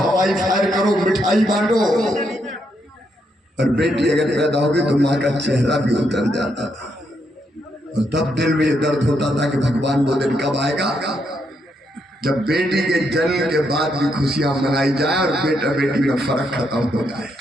फायर करो, मिठाई बांटो। और बेटी अगर पैदा होगी तो माँ का चेहरा भी उतर जाता था और तब दिल में ये दर्द होता था कि भगवान वो दिन कब आएगा जब बेटी के जन्म के बाद भी खुशियां मनाई जाए और बेटा बेटी में फर्क खत्म हो जाए।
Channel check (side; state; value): both; normal; correlation 0.78